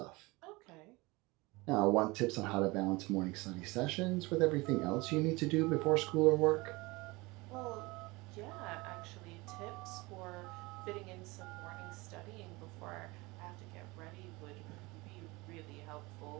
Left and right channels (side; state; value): left; quieter; 23.5 dB